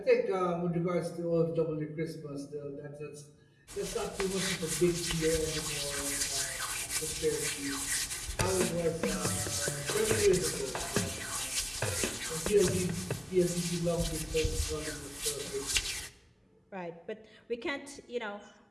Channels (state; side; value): identical; both; correlation 1.00